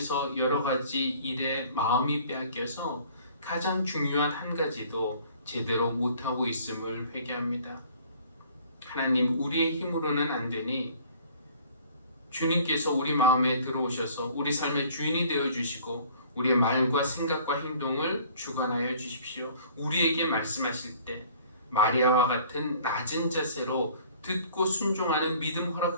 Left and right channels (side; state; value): both; inverted; correlation -0.53